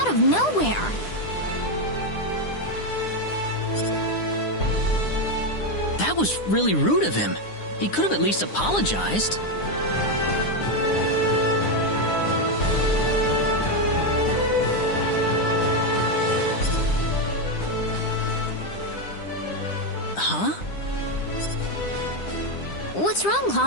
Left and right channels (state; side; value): late; right; 9.9 ms